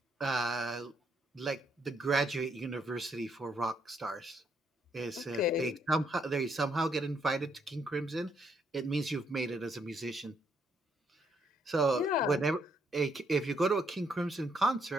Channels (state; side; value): normal; both; correlation 0.73